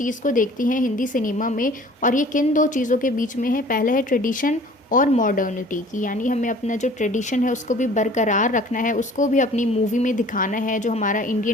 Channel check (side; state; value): both; normal; correlation 0.49